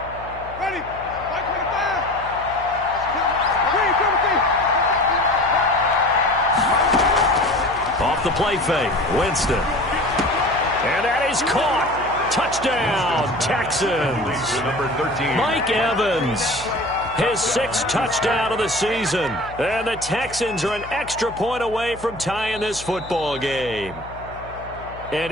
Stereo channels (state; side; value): noise; left; hum, 17 dB below the sound